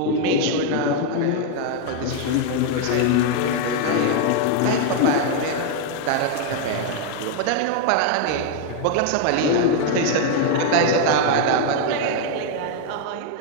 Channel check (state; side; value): different; both; correlation 0.00